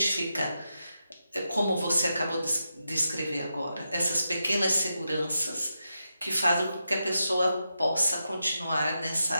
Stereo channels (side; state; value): both; inverted; correlation -0.87